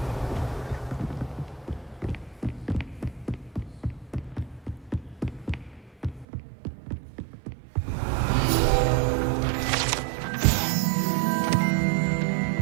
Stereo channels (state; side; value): drops out; left; at 6.2 s